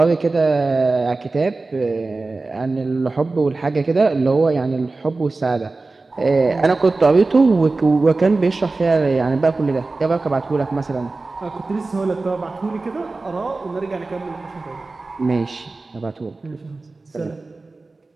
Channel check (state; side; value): quieter; left; 3.5 dB